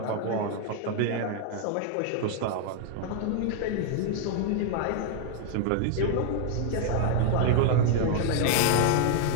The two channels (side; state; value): both; different; correlation 0.00